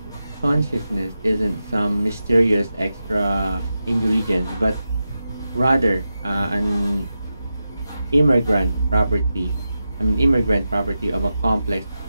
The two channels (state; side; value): inverted; both; correlation -0.90